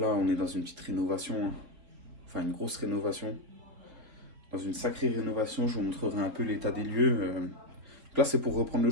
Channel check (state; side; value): late; left; 4.1 ms